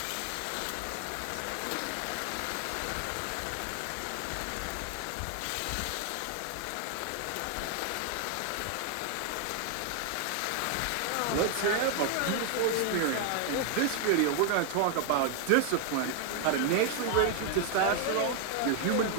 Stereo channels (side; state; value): both; different; correlation 0.00